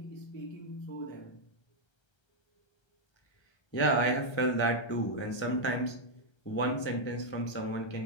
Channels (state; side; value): late; right; 1.3 ms